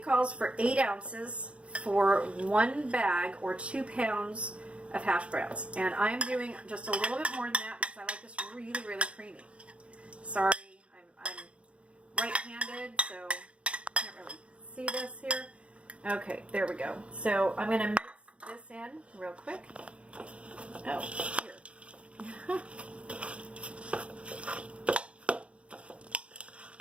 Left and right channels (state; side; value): late; left; 0.061 ms